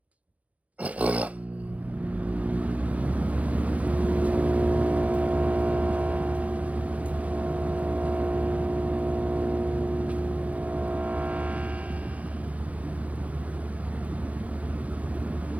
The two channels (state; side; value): late; left; 0.067 ms